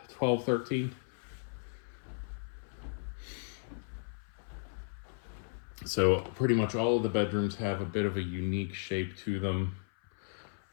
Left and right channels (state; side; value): silent; right; 54 dB below the other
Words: $12, $13. So pretty much all of the bedrooms have a bit of a unique shape to them,